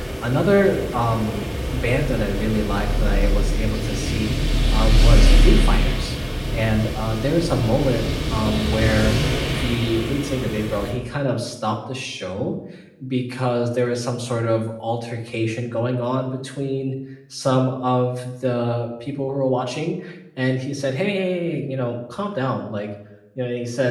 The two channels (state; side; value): identical; both; correlation 1.00